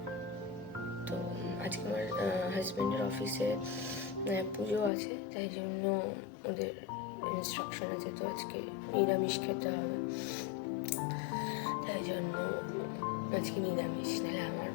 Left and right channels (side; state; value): right; drops out; at 4.9 s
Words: তো আজকে আমার হাজব্যান্ডের অফিসে পুজো আছে, তাই জন্য ওদের ইনস্ট্রাকশন আছে, তো আজকে নিরামিষ খেতে হবে। তাই জন্য আজকে নিরামিষ, নাহলে আমার